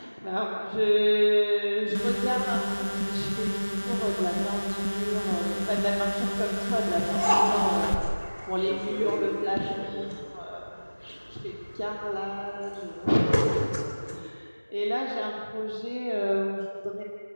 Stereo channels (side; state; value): both; inverted; correlation -1.00